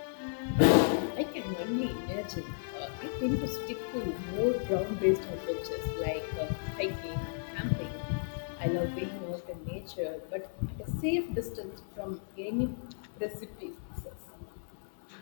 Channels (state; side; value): silent; right; 55 dB below the other